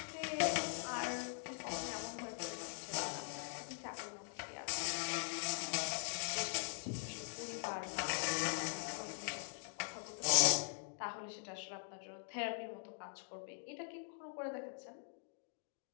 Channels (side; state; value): right; silent; digital silence